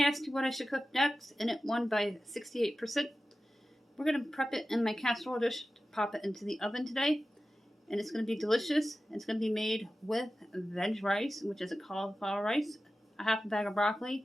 asked you what I should cook next and it won by 68%. We're going to prep it in my casserole dish to pop it into the oven today. And it's going to be delicious. It's going to be made with veg rice, which is a cauliflower rice, a half a bag of broccoli.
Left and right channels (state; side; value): normal; both; correlation 0.94